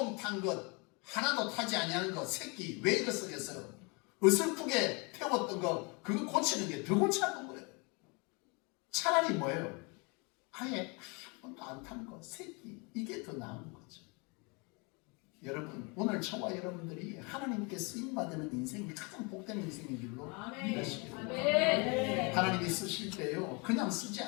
탄 것 하나도 타지 아니하는 것 새끼 왜 이거 쓰겠어요? 어설프게 태웠던 거 그거 고치는 게 더 골치 아픈 거예요. 차라리 뭐예요? 아예 한 번도 안 탄 거 새끼 이게 더 나은 거죠. 여러분 오늘 저와 여러분들이 하나님께 쓰임받는 인생이 가장 복된 인생인 줄로 믿으시기 바랍니다. 하나님이 쓰실 때요 그냥 쓰지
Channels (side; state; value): right; quieter; 30.7 dB